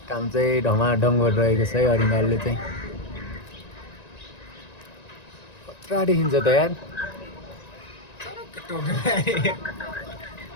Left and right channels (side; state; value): right; late; 1.9 ms